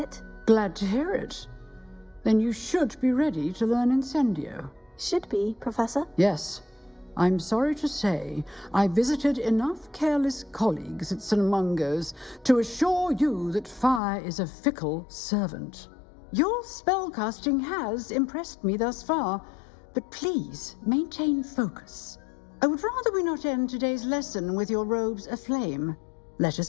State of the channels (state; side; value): drops out; right; at 14.0 s